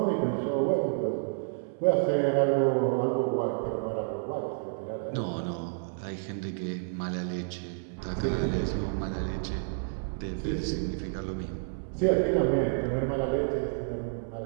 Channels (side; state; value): left; silent; 58 dB below the other